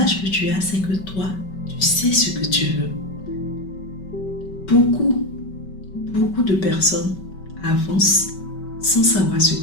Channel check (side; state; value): right; late; 5.3 ms